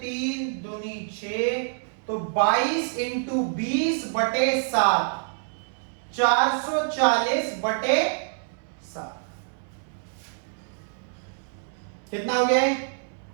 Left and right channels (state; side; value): silent; left; 61 dB below the other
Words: दूनी 6, तो 22 इंटू 20/7, 440/7 कितना हो गया?